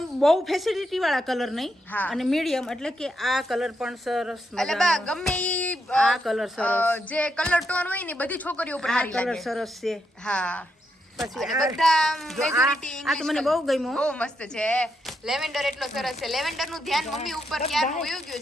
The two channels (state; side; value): normal; both; correlation 0.81